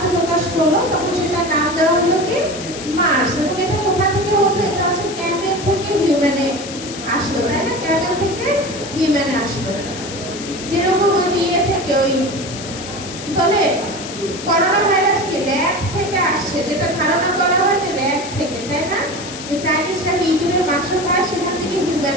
করলো, তখন সেটার নাম দেওয়া হলো কি মার্স। এবং এটা কোথা থেকে হতো? এটা হচ্ছে ক্যামেল থেকে হিউম্যানে আসলো, তাই না? ক্যামেল থেকে হিউম্যানে আসলো। যেরকম ওই যে ইয়ে থেকে ওই বলে করোনা ভাইরাস কি র্যাট থেকে আসছে, যেটা ধারণা করা হয় যে র্যাট থেকে, তাই না? চাইনিজরা কি ইঁদুরের মাংস খায়, সেখান থেকে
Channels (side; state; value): left; noise; hiss, 11 dB below the sound